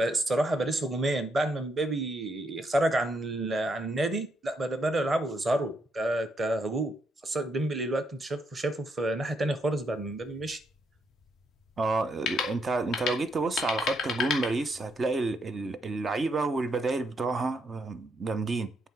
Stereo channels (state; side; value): normal; both; correlation 0.77